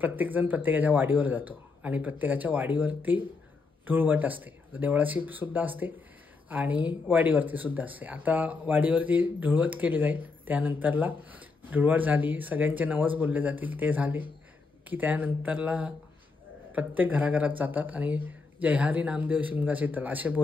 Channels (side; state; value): right; quieter; 4.2 dB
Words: प्रत्येकाच्या वाडीवर जातो आणि प्रत्येकाच्या वाडीवरती धुळवट असते, देवळाची सुद्धा असते आणि वाडीवरती सुद्धा असते. आता वाडीवरती धुळवट केली जाईल, त्यानंतरला धुळवट झाली, सगळ्यांचे नवस बोलले जातील, ते झाले की त्यानंतरला प्रत्येक घराघरात जातात आणि जय हरी नामदेव शिमगा शीतल असे